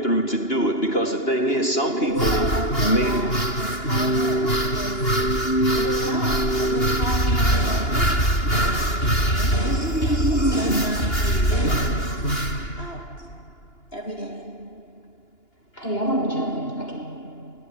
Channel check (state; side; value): late; right; 2.9 ms